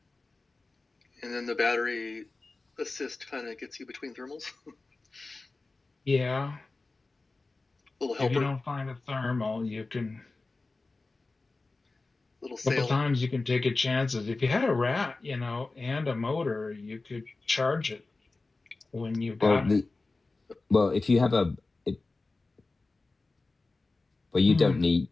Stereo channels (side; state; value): right; quieter; 3.5 dB